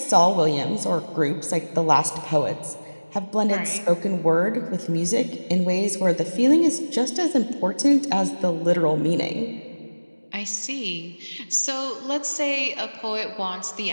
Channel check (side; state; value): both; inverted; correlation -1.00